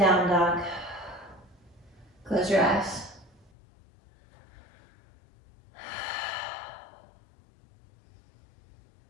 dog. Close your eyes.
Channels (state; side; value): drops out; right; at 3.5 s